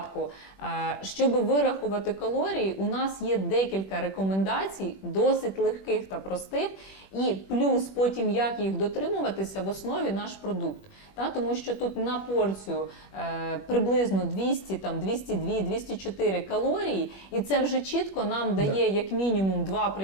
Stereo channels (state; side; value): late; right; 21 ms